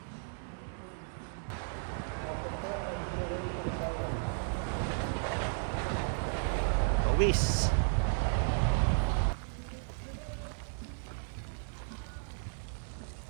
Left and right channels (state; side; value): silent; left; 55 dB below the other